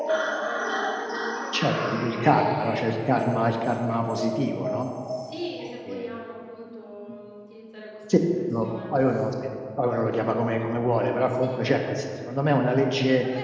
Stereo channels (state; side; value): identical; both; correlation 1.00